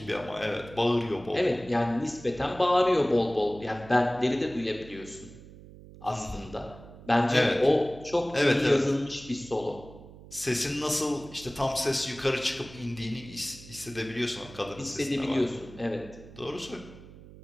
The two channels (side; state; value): right; noise; hum, 18 dB below the sound